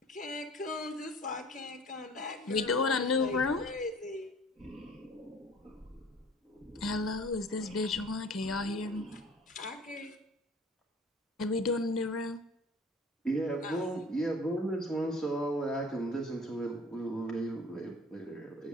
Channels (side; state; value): both; normal; correlation 0.47